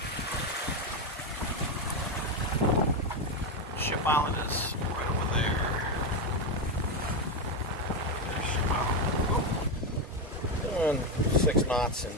Ship Island is right over there. There's Ship Island. Doing 6 knots and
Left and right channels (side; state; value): both; normal; correlation 0.09